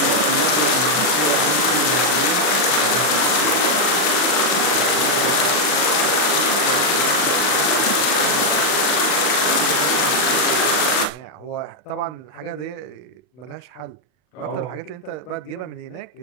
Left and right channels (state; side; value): late; right; 40 ms